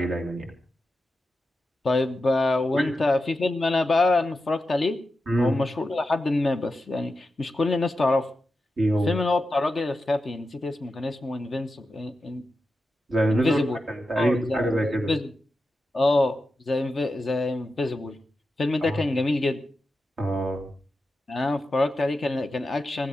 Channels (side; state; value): both; normal; correlation 0.90